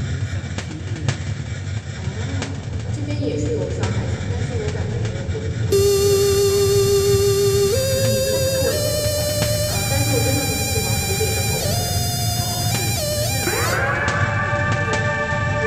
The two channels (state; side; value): identical; both; correlation 1.00